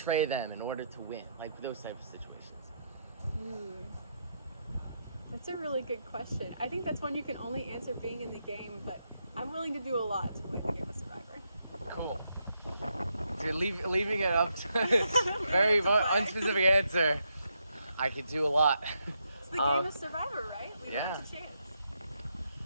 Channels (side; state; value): both; inverted; correlation -0.80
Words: them in order to win? Like those types of situations. That's a really good question. I think that's one you can only answer being in the game, but I'm willing to do a lot to win the game of Survivor. Cool. So you're leaving it up to very unspecific answer. I could do a lot. It's the game of Survivor, right? We Yeah. have a chance.